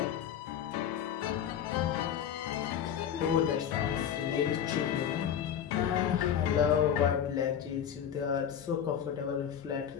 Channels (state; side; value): quieter; right; 9.0 dB